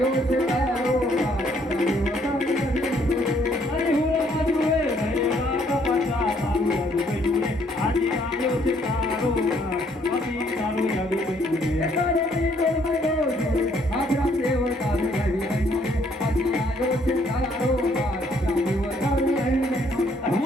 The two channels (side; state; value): both; normal; correlation 0.67